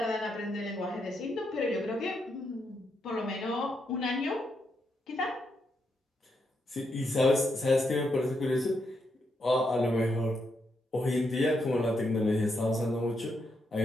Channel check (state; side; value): normal; both; correlation 0.80